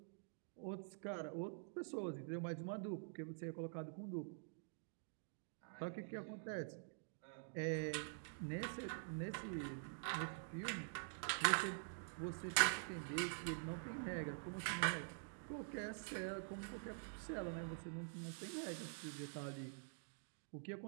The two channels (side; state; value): left; silent; digital silence